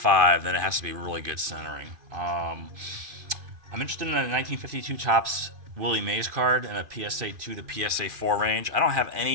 then it has to be really good centering. I'm interested in a 1952 Topps Willie Mays card in a PSA 2 to PSA 4 range. I don't have any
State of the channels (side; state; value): left; late; 2.5 ms